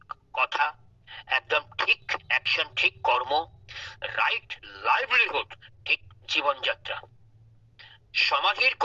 কথা, একদম ঠিক অ্যাকশন, ঠিক কর্ম, রাইট লাইভলিহুড, ঠিক জীবনযাত্রা। সমাধির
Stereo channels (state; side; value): identical; both; correlation 1.00